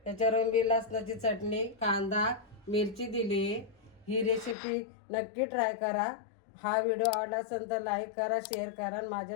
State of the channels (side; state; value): right; drops out; at 4.5 s